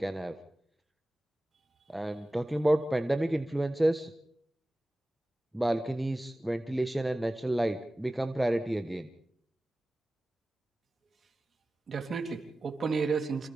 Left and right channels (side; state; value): both; normal; correlation 0.96